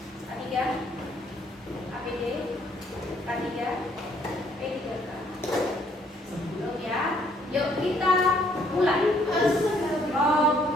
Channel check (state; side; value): normal; both; correlation 0.66